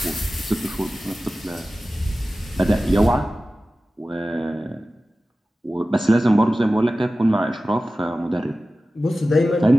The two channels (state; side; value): normal; both; correlation 0.95